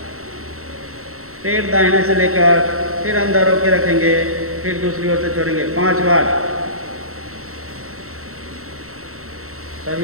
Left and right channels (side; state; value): left; late; 0.63 ms